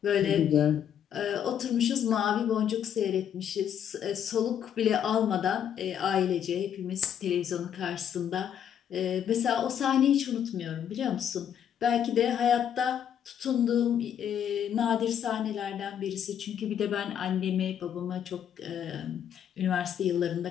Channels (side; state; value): right; quieter; 9.1 dB